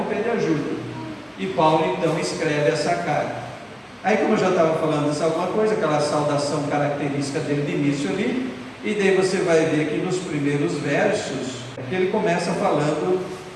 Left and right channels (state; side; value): identical; both; correlation 1.00